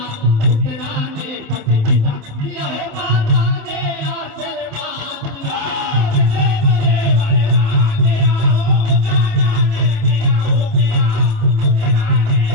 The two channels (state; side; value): late; left; 27 ms